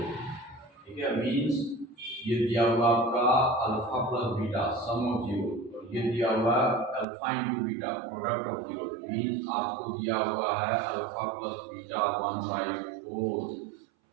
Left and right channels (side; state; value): left; drops out; at 7.1 s